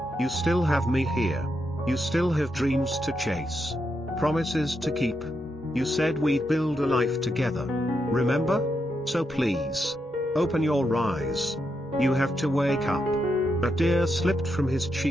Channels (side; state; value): both; normal; correlation 0.83